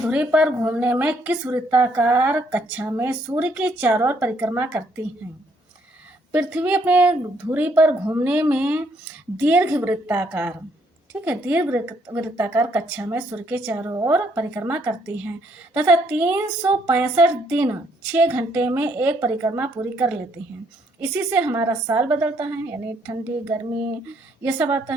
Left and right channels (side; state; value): both; normal; correlation 0.69